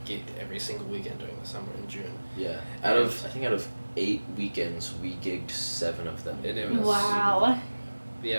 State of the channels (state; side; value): inverted; both; correlation -1.00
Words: gigged every single weekend during the summer in June. Yeah, out of 8 weekends we gigged 7 of them. And it was Wow. Yeah,